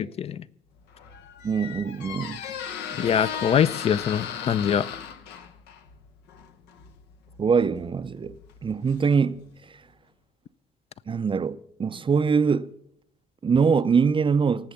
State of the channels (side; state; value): both; normal; correlation 0.63